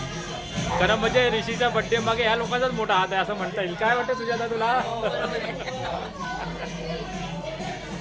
खरं म्हणजे ऋषीच्या बड्डे मागे ह्या लोकांचाच मोठा हात आहे असं म्हणता येईल काय वाटतं सुजाता तुला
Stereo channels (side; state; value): both; identical; correlation 1.00